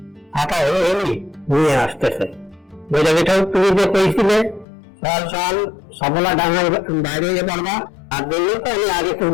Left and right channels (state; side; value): drops out; right; at 4.7 s